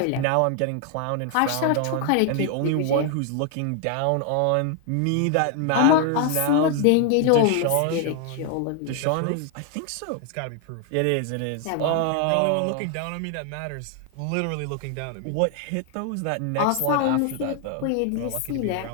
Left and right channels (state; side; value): different; both; correlation 0.00